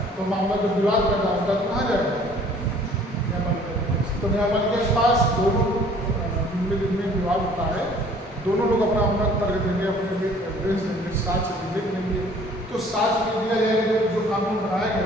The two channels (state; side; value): normal; both; correlation 0.54